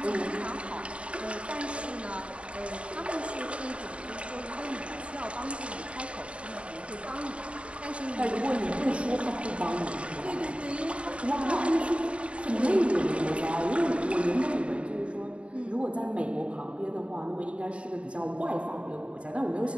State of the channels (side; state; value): left; late; 0.060 ms